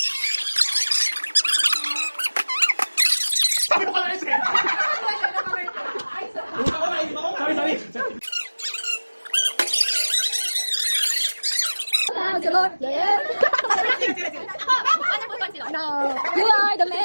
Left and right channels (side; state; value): both; inverted; correlation -1.00